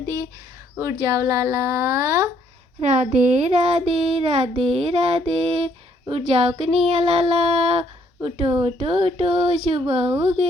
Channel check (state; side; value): normal; both; correlation 0.67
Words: दिए। उठ जाओ लाला, राधे राधे, राधे राधे, उठ जाओ कन्हैया लाला, उठो उठो उठो, सुबह हो